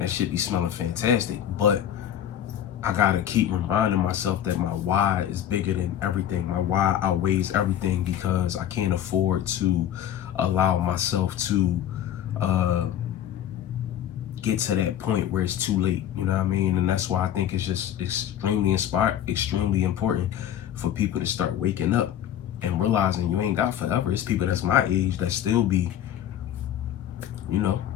that shit be smelling fantastic. But I gotta keep reminding myself that my why is bigger than everything. My why outweighs everything, because I can't afford to allow myself to get to that point where it's too late. You know what I mean? And that's why I think it's just extremely important for people to start waking up and realizing you ain't got forever. It's people that's my age that still be, you know,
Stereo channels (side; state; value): right; quieter; 10.7 dB